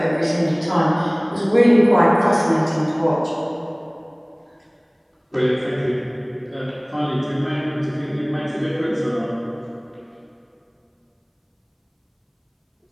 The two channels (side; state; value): both; identical; correlation 1.00